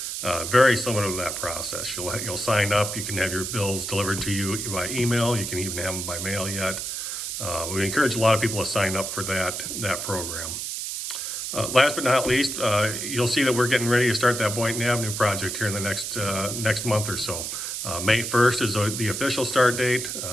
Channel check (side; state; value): right; noise; hiss, 4 dB below the sound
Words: very similar to that process. You'll sign up, you can have your bills delivered to you by email, you can even have them by mail yet. We encourage a lot of people to sign up for that program. Last but not least, you'll see that we're getting ready to start that Boynton Avenue project here in the next month or so. May 1st is the official start date.